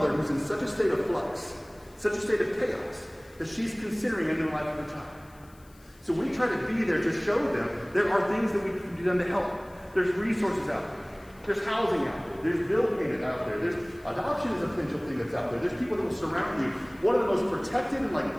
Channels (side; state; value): left; noise; hiss, 28 dB below the sound